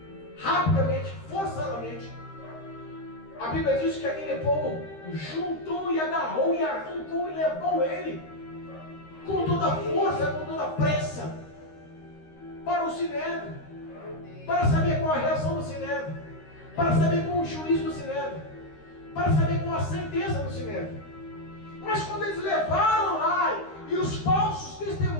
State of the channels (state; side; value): late; right; 13 ms